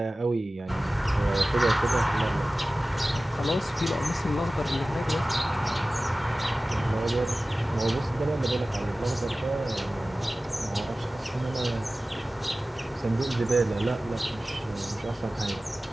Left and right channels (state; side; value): normal; both; correlation 0.96